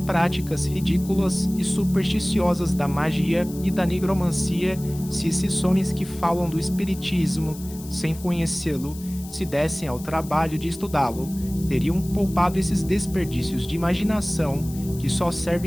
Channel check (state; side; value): noise; left; hiss, 17 dB below the sound